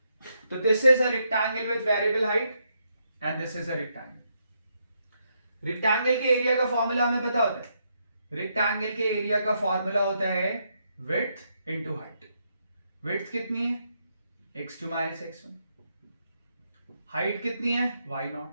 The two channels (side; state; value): both; inverted; correlation -0.78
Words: तो this is a rectangle with variable height and this is a rectangle. Rectangle के एरिया का फॉर्मूला हमें पता होता है। रेक्टेंगल के एरिया का फॉर्मूला होता है विड्थ इनटू हाइट। विड्थ कितनी है? x2 minus x1। हाइट कितनी है? y0।